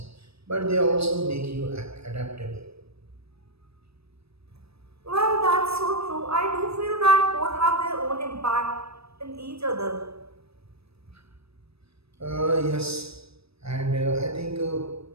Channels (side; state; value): left; late; 0.78 ms